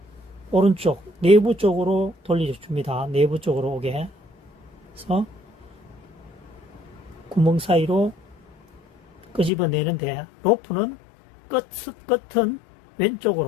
오른쪽 내부 쪽으로 돌려줍니다. 내부 쪽으로 오게 해서 구멍 사이로 끄집어내는데, 로프는 끝은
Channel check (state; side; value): drops out; right; at 9.5 s